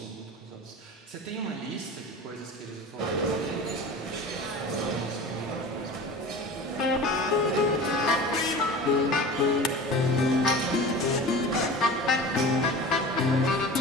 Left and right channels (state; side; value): normal; both; correlation 0.35